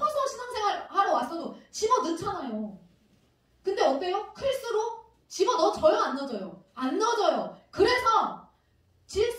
신앙생활 하러 왔어도 집어넣잖아요. 근데 어때요? 클수록 집어넣어져요? 안 넣어져요? 안 넣어져요. 그래서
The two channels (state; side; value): identical; both; correlation 1.00